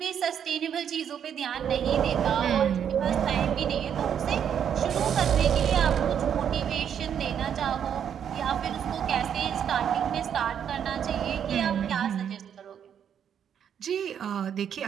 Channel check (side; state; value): left; quieter; 8.6 dB